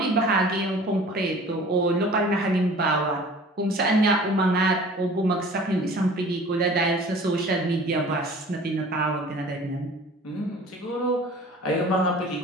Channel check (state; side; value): normal; both; correlation 0.45